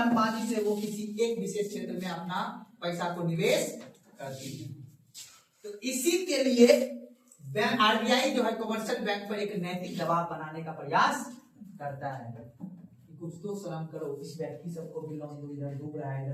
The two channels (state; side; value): identical; both; correlation 1.00